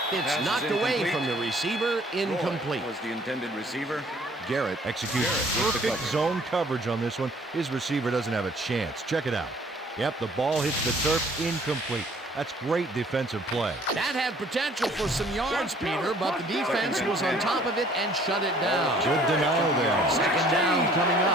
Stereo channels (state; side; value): normal; both; correlation 0.57